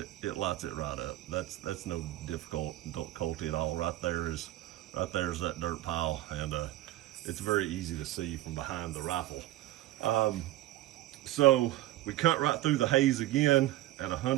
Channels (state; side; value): quieter; left; 15.7 dB